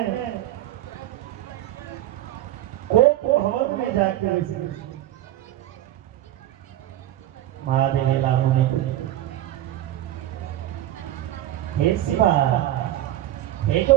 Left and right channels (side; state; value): left; quieter; 13.7 dB